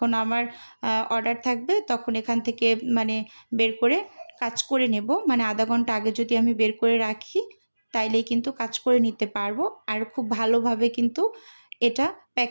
আমার অর্ডার থাকবে তখন এখান থেকে মানে বের করে কাজ করে নেব। মানে আধা ঘন্টা আগে যদি আমি বের করে রাখি তাইলেই কিন্তু কাজ করে নিতে পারবো। আর খুব ভালোভাবে কিন্তু এটা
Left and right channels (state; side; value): inverted; both; correlation -1.00